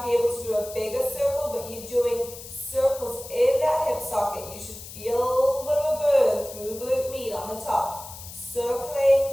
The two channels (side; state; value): left; noise; hiss, 14 dB below the sound